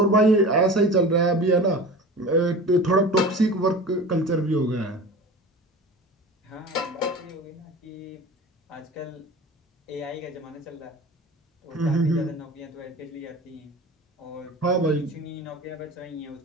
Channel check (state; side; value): normal; both; correlation 0.36